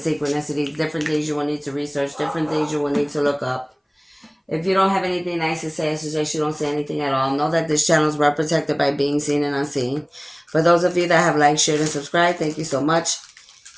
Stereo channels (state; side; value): identical; both; correlation 1.00